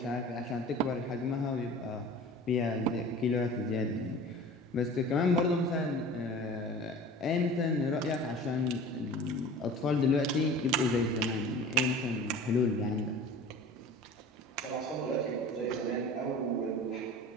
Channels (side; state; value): both; normal; correlation 0.40